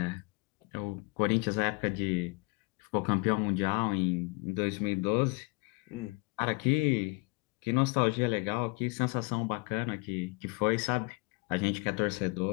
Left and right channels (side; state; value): right; quieter; 29.6 dB